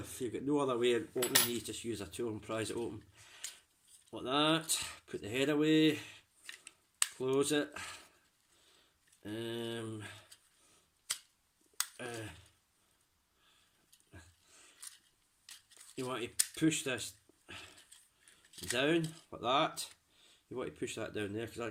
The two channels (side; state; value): both; identical; correlation 1.00